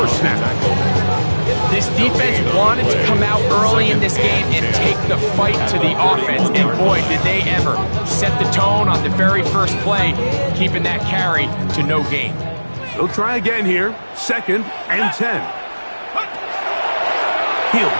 snap. This defense wanted to come out early in this game and take the fight to the offense, and boy, did they ever set the tone on the very first play, keeping that carry to no gain. They'll try again here, 2nd and 10. He'll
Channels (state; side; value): inverted; both; correlation -1.00